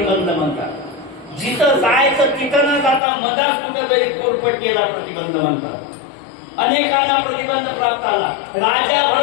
म्हणतात. जिथं जायचं तिथं न जाता मधात कुठं तरी पोटपट्टीला प्रतिबंध म्हणतात. अनेकांना प्रतिबंध प्राप्त आला. राजा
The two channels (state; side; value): drops out; right; at 3.0 s